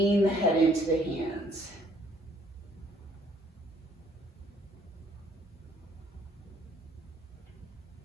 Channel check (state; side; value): normal; both; correlation 0.63